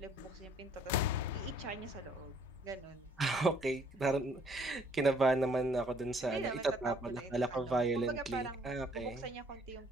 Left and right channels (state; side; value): normal; both; correlation 0.61